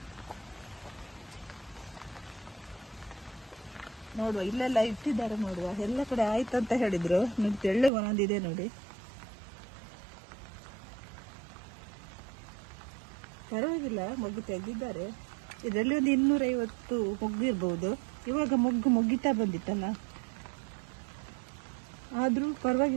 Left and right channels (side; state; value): left; drops out; at 7.9 s